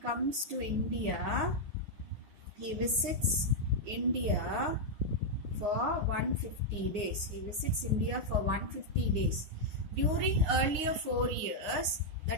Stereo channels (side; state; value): left; late; 9.7 ms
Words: to India. He visits India for 150 days. He visits India for 150 days. During earlier 4 years,